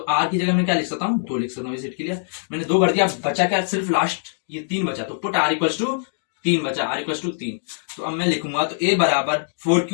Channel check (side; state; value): right; silent; digital silence